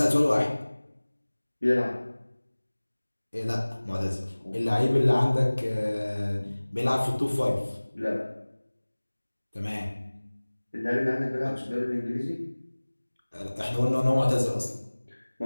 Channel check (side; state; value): both; inverted; correlation -1.00